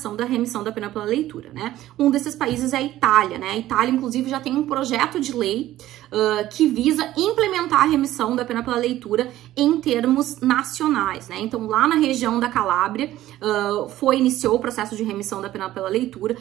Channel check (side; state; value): left; quieter; 14.4 dB